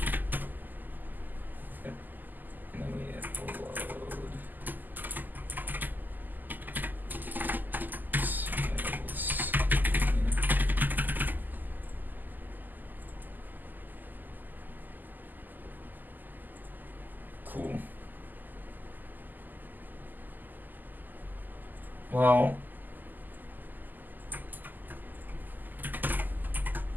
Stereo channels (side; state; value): left; late; 0.086 ms